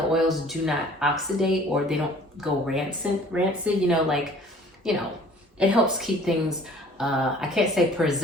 oils do not oxidate or they don't go rancid, it helps keep things, I can't say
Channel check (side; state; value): both; normal; correlation 0.51